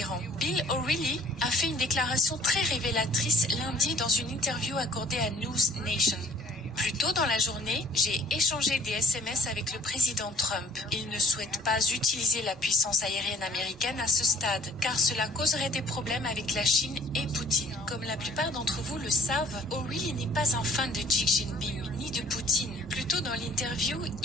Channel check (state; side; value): normal; both; correlation 0.58